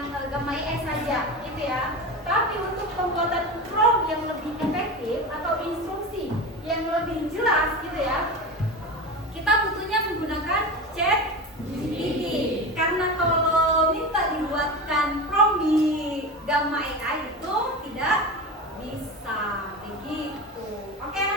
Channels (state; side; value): normal; both; correlation 0.25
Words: Gamma AI saja, gitu ya. Tapi untuk pembuatan prompt yang lebih efektif atau instruksi yang lebih jelas, gitu ya, kita butuhnya menggunakan ChatGPT. Karena kalau minta dibuatkan prompt di Gamma AI itu tidak bisa begitu. Oke